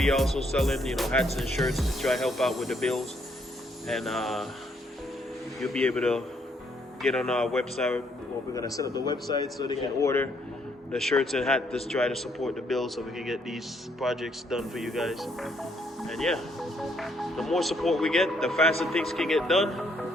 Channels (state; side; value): normal; both; correlation 0.70